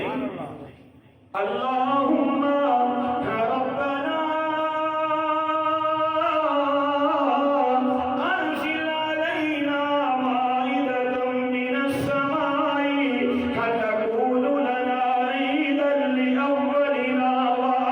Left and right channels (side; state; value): both; identical; correlation 1.00